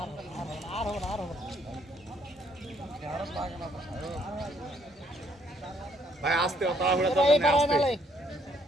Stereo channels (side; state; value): both; normal; correlation 0.67